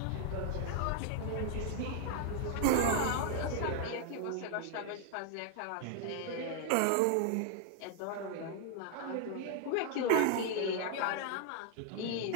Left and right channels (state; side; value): different; both; correlation 0.00